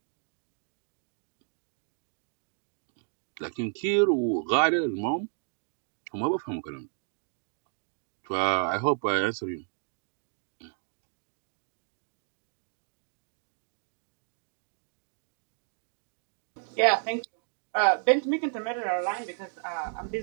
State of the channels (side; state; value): left; silent; 56 dB below the other